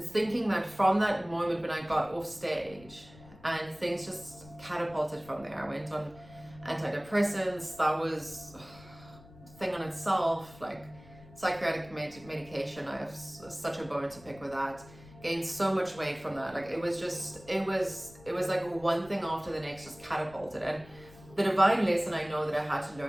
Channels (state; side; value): noise; left; rumble, 21 dB below the sound